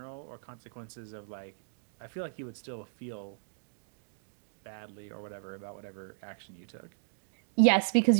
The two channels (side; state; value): left; silent; digital silence